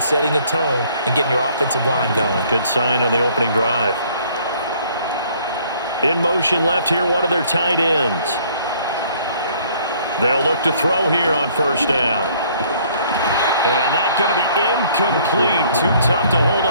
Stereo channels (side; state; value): both; inverted; correlation -0.60